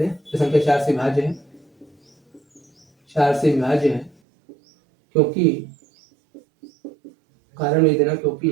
तो संख्या 4 से विभाज्य है 4 से विभाज्य है क्योंकि कारण लिख देना क्योंकि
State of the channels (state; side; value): drops out; left; at 4.2 s